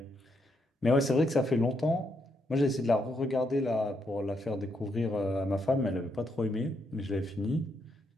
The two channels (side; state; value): both; normal; correlation 0.78